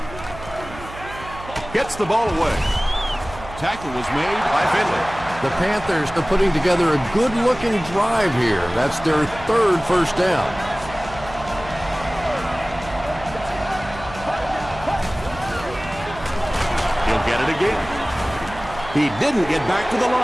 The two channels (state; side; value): noise; right; hum, 15 dB below the sound